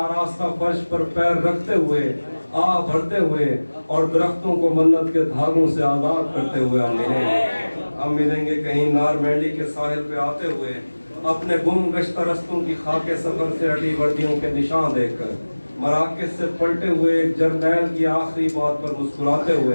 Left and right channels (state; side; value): inverted; both; correlation -1.00